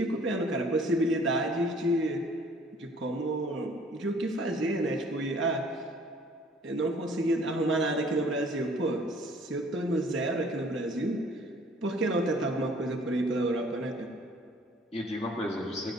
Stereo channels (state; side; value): normal; both; correlation 0.55